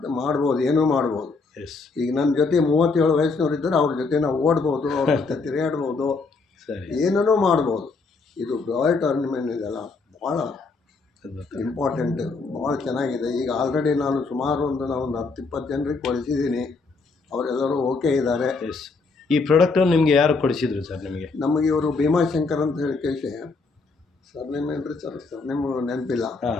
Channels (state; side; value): quieter; right; 4.1 dB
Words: ಮಾಡ್ಬೋದು, ಏನೂ ಮಾಡ್ಬೋದು. ಈಗ ನನ್ನ ಜೊತೆ 37 ವಯಸ್ಸಿನವ್ರು ಇದ್ದರೆ ಅವ್ರ ಜೊತೆ ನಾವು ಓಡ್ಬೋದು, ಅವ್ರ ಜೊತೆ ತಿರುಗಾಡ್ಬೋದು, ಏನೂ ಮಾಡ್ಬೋದು. ಇದು ಬಯೋಟೋರಿಯಂ ಇದೆಲ್ಲ ಭಾಳ ಇಂಪಾರ್ಟೆಂಟ್, ಭಾಳ ಚೆನ್ನಾಗಿದೆ. ಈಗ ಆಲ್ರೆಡಿ ನಾನು ಸುಮಾರು ಒಂದು 10-20 ಜನರಿಗೆ ಕೊಡಿಸಿದ್ದೀನಿ, ಅವರೆಲ್ಲರೂ ಓಕೆ ಇದ್ದಾರೆ. ಈ ಪ್ರಾಡಕ್ಟನ್ನು ನಿಮಗೆ ಯಾರು ಕೊಡಿಸಿದ್ರು ಸರ್? ನಮಗೆ ಇವರು ಭೀಮಾಶಂಕರ್ ಅಂತ ಹೇಳಿ ಕೇಳಿ, ಸರ್ನೇಮ್ ಏನ್ರಿ ಸರ್? ಸರ್ನೇಮ್ ನೆನಪಿಲ್ಲ,